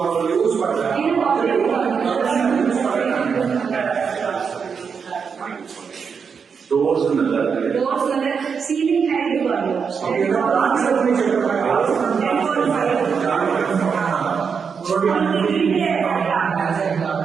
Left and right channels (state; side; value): quieter; left; 6.1 dB